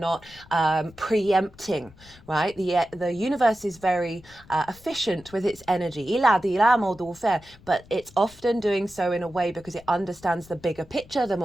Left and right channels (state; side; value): noise; left; rumble, 24 dB below the sound